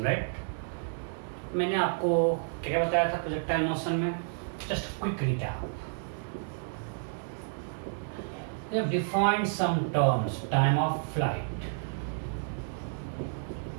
right? मैंने आपको क्या क्या बताया था प्रोजेक्टाइल मोशन में? Just quick recap. We have defined some terms, time of flight.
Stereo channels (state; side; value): silent; left; digital silence